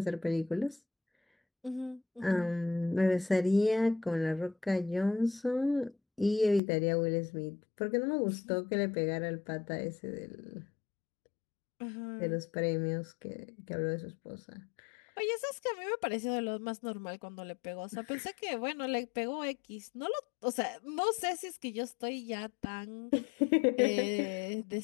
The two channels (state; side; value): drops out; right; at 6.6 s